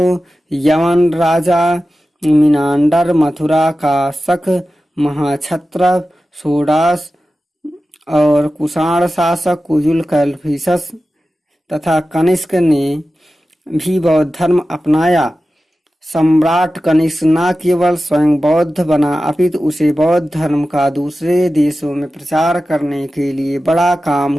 यमन राजा मिनांडर, मथुरा का शक, महाक्षत्रप सोडास और कुषाण शासक कुजुल कैडफिसस तथा कनिष्क ने भी बौद्ध धर्म अपनाया। सम्राट कनिष्क न केवल स्वयं बौद्ध बना अपितु उसे बौद्ध धर्म का दूसरे देशों में प्रचार करने के लिए बड़ा काम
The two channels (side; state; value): both; normal; correlation 0.94